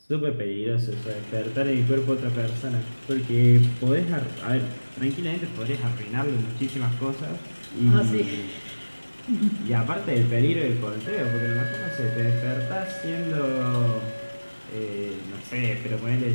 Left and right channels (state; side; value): inverted; both; correlation -1.00